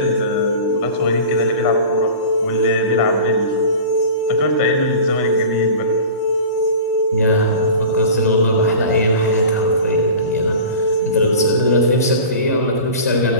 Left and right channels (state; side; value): inverted; both; correlation -0.37